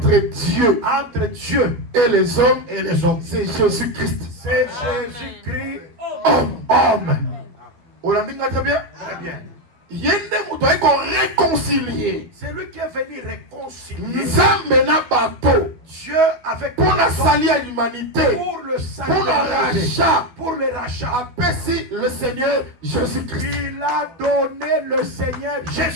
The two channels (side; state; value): left; late; 12 ms